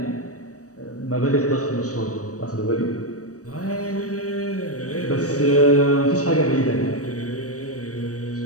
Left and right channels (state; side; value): late; right; 0.66 ms